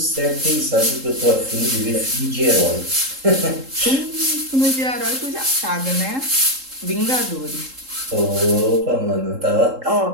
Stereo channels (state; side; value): late; left; 3.7 ms